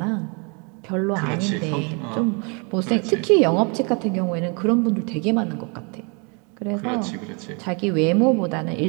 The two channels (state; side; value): quieter; left; 33.9 dB